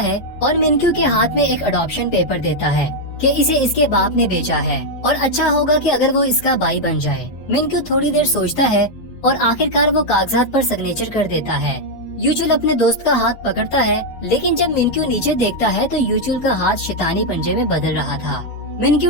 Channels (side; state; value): right; late; 9.8 ms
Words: और मिनक्यू के हाथ में एक अडॉप्शन पेपर देता है कि इसे इसके बाप ने भेजा है और अच्छा होगा कि अगर वो इसका भाई बन जाए। मिनक्यू थोड़ी देर सोचता है और आखिरकार वो कागजात पर सिग्नेचर कर देता है। यूचुल अपने दोस्त का हाथ पकड़ता है, लेकिन जब मिनक्यू नीचे देखता है तो यूचुल का हाथ शैतानी पंजे में बदल रहा था।